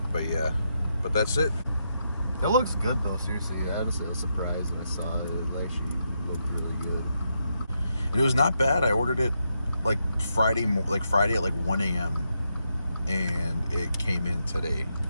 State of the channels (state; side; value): inverted; both; correlation -0.82